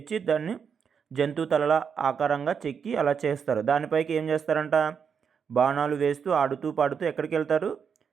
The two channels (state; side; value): quieter; left; 6.8 dB